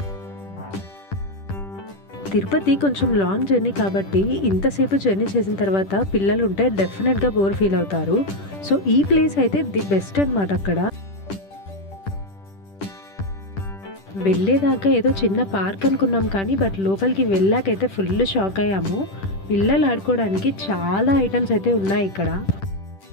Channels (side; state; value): right; late; 10 ms